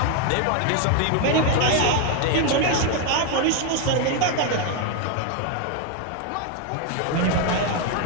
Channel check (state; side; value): different; both; correlation 0.01